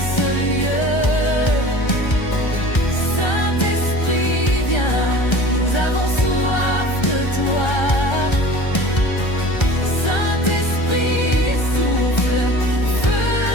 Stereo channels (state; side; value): late; right; 1.3 ms